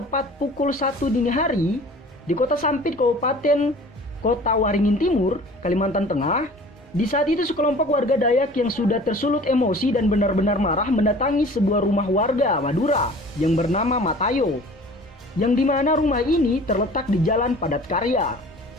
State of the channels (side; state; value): both; normal; correlation 0.45